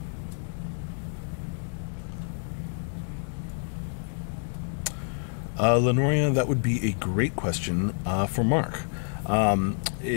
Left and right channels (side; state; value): right; silent; digital silence